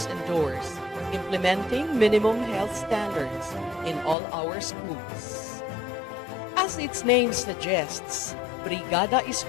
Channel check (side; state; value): right; drops out; at 4.2 s